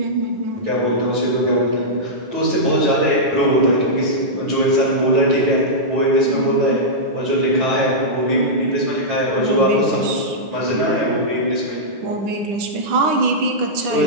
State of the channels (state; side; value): late; left; 9.9 ms